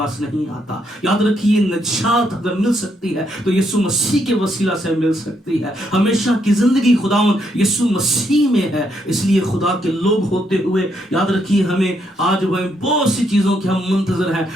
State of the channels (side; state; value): both; normal; correlation 0.76